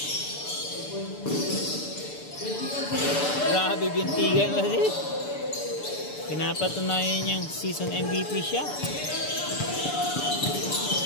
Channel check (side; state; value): right; late; 6.9 ms